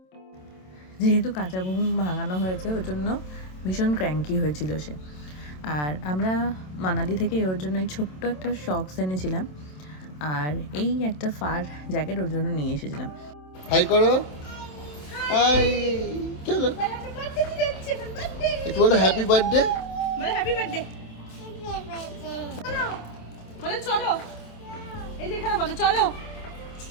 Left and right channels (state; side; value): late; right; 27 ms